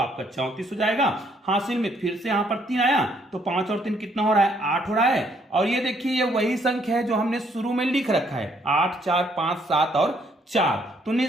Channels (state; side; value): normal; both; correlation 0.68